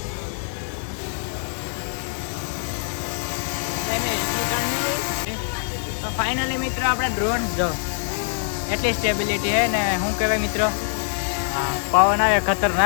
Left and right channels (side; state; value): right; silent; digital silence